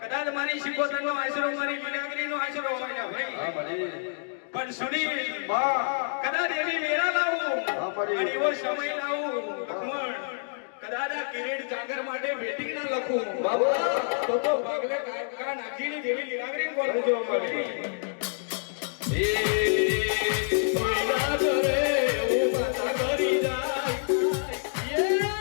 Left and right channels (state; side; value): silent; right; digital silence